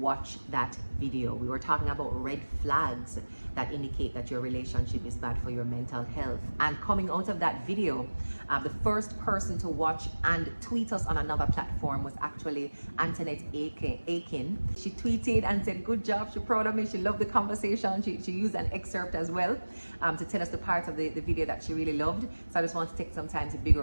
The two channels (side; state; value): both; inverted; correlation -1.00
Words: that video. We were talking about red flags that indicate that your relationship is bad for your mental health. And coming out of that video, the first person to watch and tweet us on another platform was actually Antoinette Aiken. She tweeted and said, good job, she's proud of me, she loved the conversation. She used an excerpt as well to tell us the parts of the video that she really loved. So I just want to take some time to big her